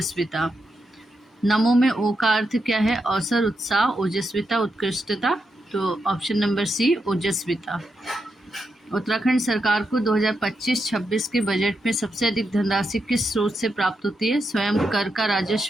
नमो में ओ का अर्थ क्या है? अवसर, उत्साह, ओजस्विता, उत्कृष्टता। तो ऑप्शन नंबर सी, ओजस्विता। उत्तराखंड सरकार को 2025-26 के बजट में सबसे अधिक धनराशि किस स्रोत से प्राप्त होती है? स्वयं कर का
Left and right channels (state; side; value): normal; both; correlation 0.84